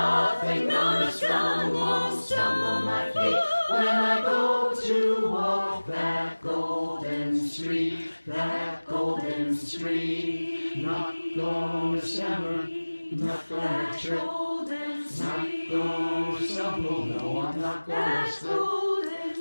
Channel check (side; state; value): both; inverted; correlation -1.00